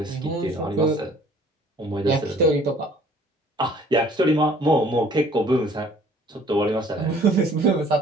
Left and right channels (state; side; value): normal; both; correlation 0.55